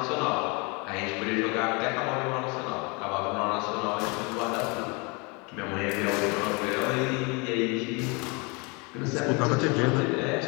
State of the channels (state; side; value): quieter; right; 29.9 dB